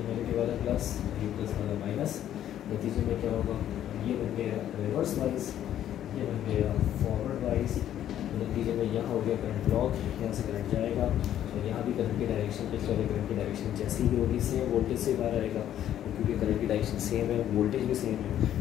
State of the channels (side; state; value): right; quieter; 11.2 dB